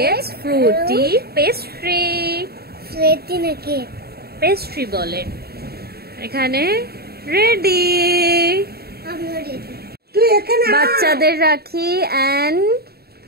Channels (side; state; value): left; late; 0.46 ms